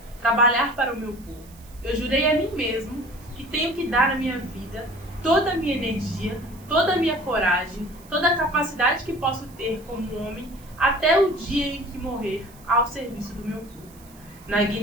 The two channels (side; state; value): right; noise; hiss, 24 dB below the sound